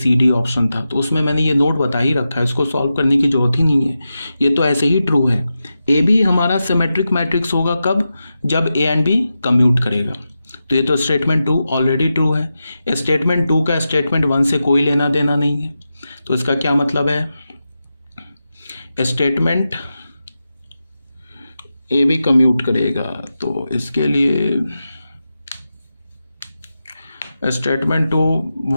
D option था, तो उसमें मैंने ये नोट बता ही रखा है, इसको सॉल्व करने की जरूरत ही नहीं है, ये तो ऐसे ही ट्रू है। ए बी हमारा सिमेट्रिक मैट्रिक्स होगा कब, जब ए एंड बी कम्यूट करेगा, तो ये तो स्टेटमेंट 2 ऑलरेडी ट्रू है। स्टेटमेंट 2 का स्टेटमेंट 1 से कोई लेना देना नहीं है, तो इसका क्या मतलब है, स्टेटमेंट ए बी कम्यूट करेगा तो इसके लिए statement 2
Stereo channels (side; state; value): both; inverted; correlation -0.90